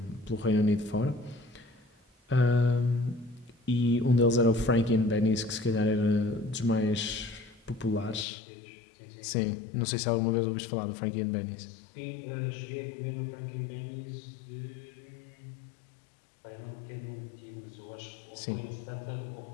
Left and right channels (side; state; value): right; drops out; at 8.2 s